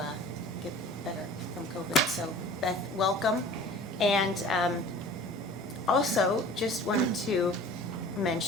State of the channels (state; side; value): normal; both; correlation 0.44